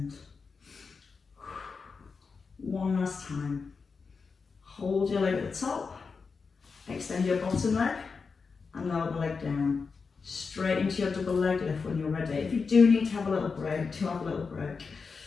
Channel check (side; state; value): right; quieter; 5.0 dB